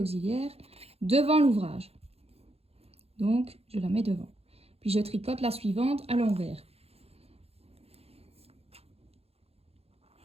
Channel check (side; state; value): left; late; 0.29 ms